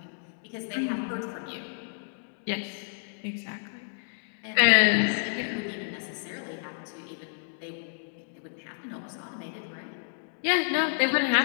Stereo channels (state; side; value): silent; right; digital silence